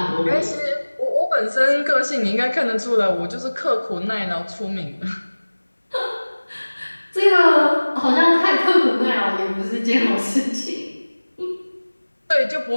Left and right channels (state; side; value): inverted; both; correlation -1.00